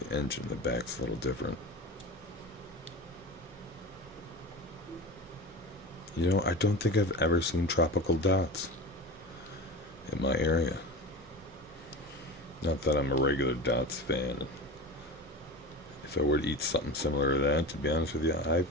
engine in the back's a little different. You know, I don't think I've ever seen tropical dots in my area. Not that I'm a regular dots fan. If I were to eat something similar to that, to be honest with you, I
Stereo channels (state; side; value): normal; both; correlation 0.29